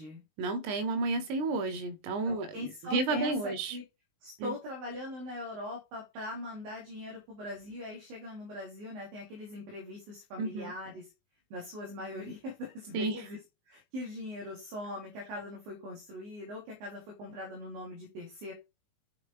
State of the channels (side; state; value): left; late; 19 ms